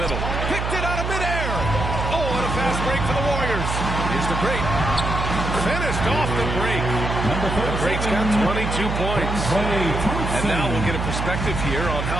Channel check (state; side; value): noise; right; hum, 2 dB below the sound